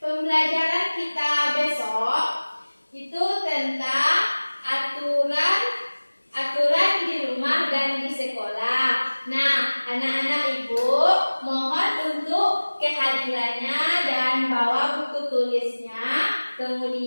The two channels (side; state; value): both; inverted; correlation -1.00